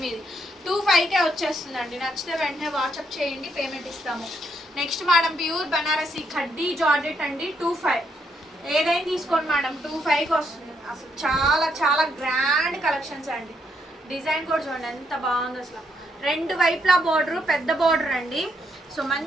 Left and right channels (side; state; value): both; normal; correlation 0.76